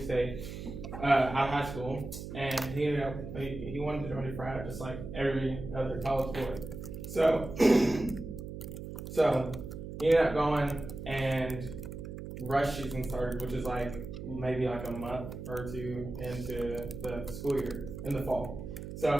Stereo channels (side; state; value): right; noise; hum, 9 dB below the sound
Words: out of high school, and he wanted to join a frat just like every other college boy. So, so he ended up going, and rush season started, which is like maybe like a month or two into the school year in the fall.